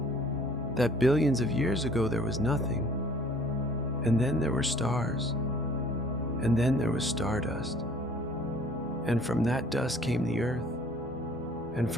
That billions of years ago there was nothing, and then there were stars, and then there was stardust, and from that dust came the earth, and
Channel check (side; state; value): both; normal; correlation 0.54